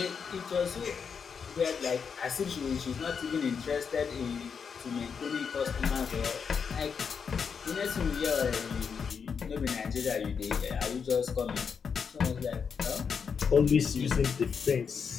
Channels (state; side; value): quieter; right; 6.3 dB